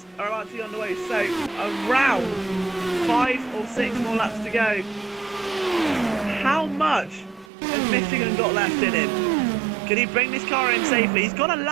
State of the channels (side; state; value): left; drops out; at 7.5 s